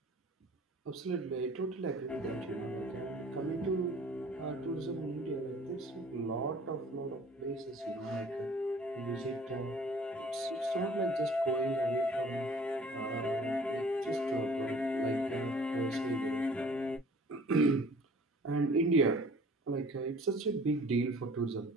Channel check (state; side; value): normal; both; correlation 0.50